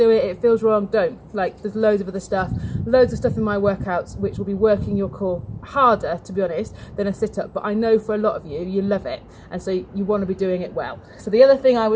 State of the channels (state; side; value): identical; both; correlation 1.00